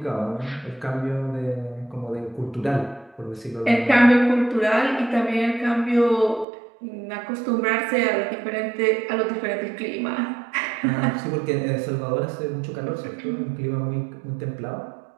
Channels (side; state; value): left; drops out; at 6.5 s